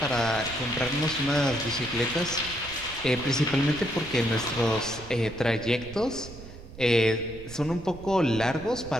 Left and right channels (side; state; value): right; noise; rumble, 15 dB below the sound